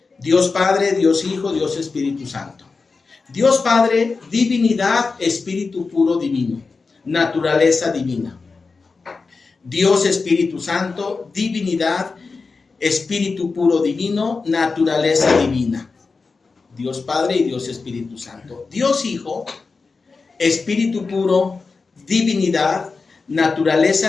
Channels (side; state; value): right; quieter; 4.3 dB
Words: Dios Padre, Dios Hijo, Dios Espíritu Santo. Dios Padre, divinidad, espíritu puro divino, naturaleza divina. Dios Espíritu Santo, divinidad, espíritu puro divino, naturaleza divina. Dios Padre y Dios Espíritu Santo. Dios Hijo, espíritu puro, divinidad,